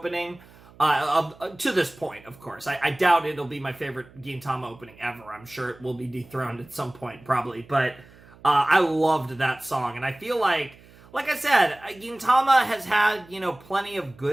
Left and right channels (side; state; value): right; noise; hum, 24 dB below the sound